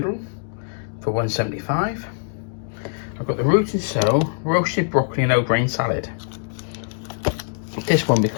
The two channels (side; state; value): right; silent; digital silence